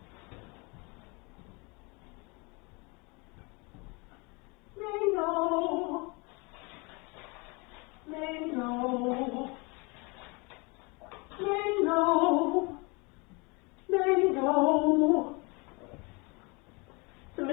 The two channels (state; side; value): quieter; right; 28.8 dB